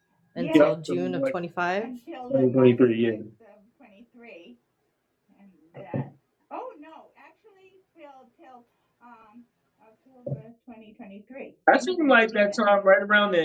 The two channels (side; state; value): both; identical; correlation 1.00